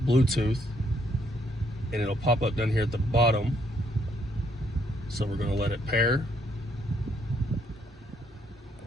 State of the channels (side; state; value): both; normal; correlation 0.71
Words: Bluetooth, and it'll pop up down here at the bottom. So we're going to let it pair.